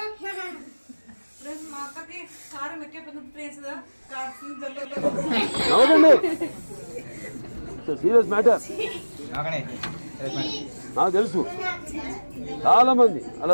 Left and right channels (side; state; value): both; inverted; correlation -1.00